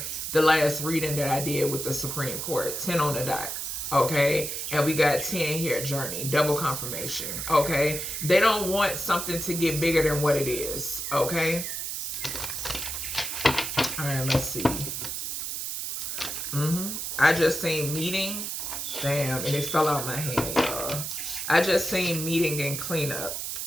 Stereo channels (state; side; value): noise; right; hiss, 4 dB below the sound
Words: the last reading that I did with the Supreme Court, 10 on the dot. Okay, and we got 10 here, journey, double confirmation. Okay, they don't want something to get bigger than what it is. Okay, all right, let's see. I just seen meeting. Damn, and it fell out my hand, y'all. I just seen meeting and cleanup.